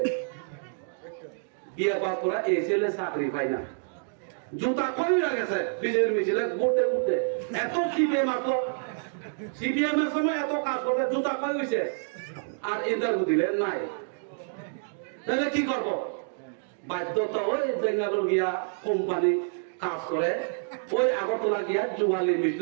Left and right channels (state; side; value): silent; left; digital silence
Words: বিয়ে পাস করা এই ছেলে চাকরি পাই না। জুতা কইরা গেছে বিজেপির মিছিলে ঘুরতে ঘুরতে। এত সিপিএম আসলো, সিপিএম এর সময় এত কাজ করতে জুতা কই হইছে, আর ইন্টারভিউ দিলে নাই। তাহলে কি করব? বাধ্যতা ওই বেঙ্গালুরু গিয়া কোম্পানি কাজ করে, ওই আগরতলা গিয়া যুবালি